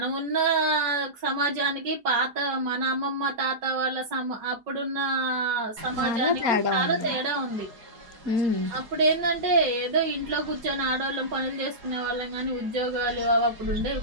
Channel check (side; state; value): left; late; 4.8 ms